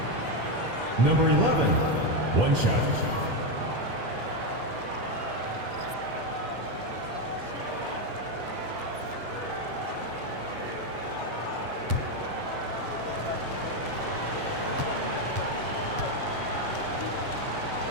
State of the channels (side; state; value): left; late; 7.3 ms